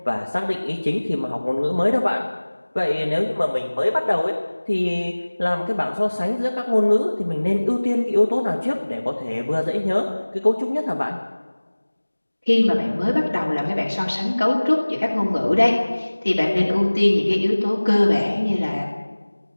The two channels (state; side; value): inverted; both; correlation -1.00